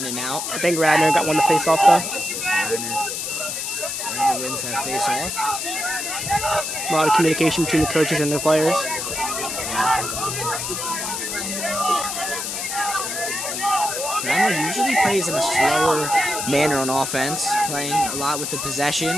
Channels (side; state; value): left; noise; hiss, 4 dB below the sound